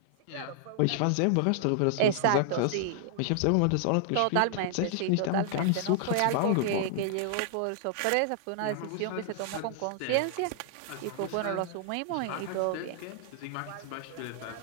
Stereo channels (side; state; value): both; different; correlation -0.01